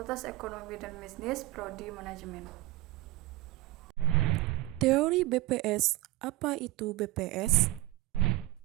Ekonomi dan Bisnis, Prodi Manajemen. Teori BPS. Apa itu BPS?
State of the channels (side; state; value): left; quieter; 17.2 dB